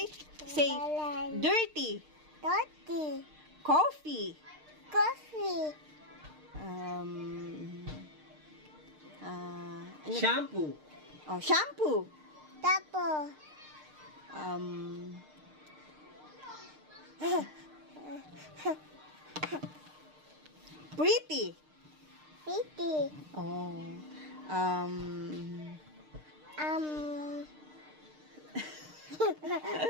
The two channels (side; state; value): left; late; 6.6 ms